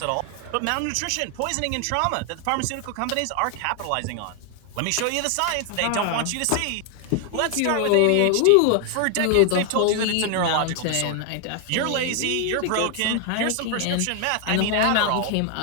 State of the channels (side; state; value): both; different; correlation 0.00